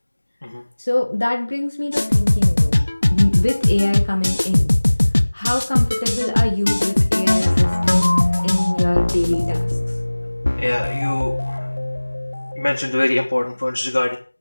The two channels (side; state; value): both; inverted; correlation -1.00